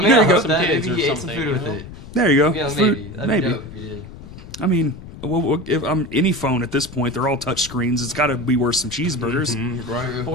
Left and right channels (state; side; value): noise; left; rumble, 15 dB below the sound